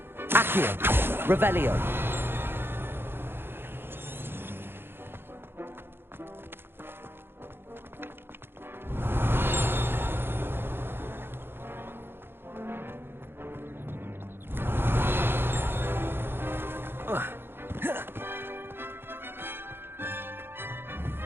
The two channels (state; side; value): late; left; 0.11 ms